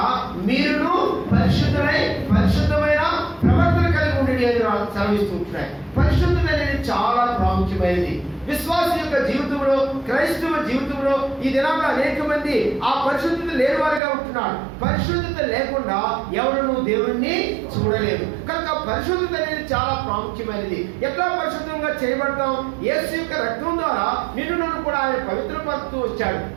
మీరును పరిశుద్ధమైన ప్రవర్తన కలిగి ఉండండి అని సెలవిస్తూ ఉంటున్నాయి. పరిశుద్ధత అనేది చాలా ప్రాముఖ్యమైనది. విశ్వాస యొక్క జీవితంలో, క్రైస్తవ జీవితంలో ఈ దినాల్లో అనేక మంది ఆ పరిశుద్ధత లేని వారిగా ఉంటున్నారు. పరిశుద్ధత లేకుండా ఎవరు దేవుణ్ణి చూడలేరు. కనుక పరిశుద్ధత అనేది చాలా ప్రాముఖ్యమైనది. ఎట్లా పరిశుద్ధంగా చేయబడతాం? యేసు యొక్క రక్తం ద్వారా నిన్ను నన్ను కూడా ఆయన పవిత్రపరుస్తూ వచ్చాడు.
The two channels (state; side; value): drops out; left; at 14.0 s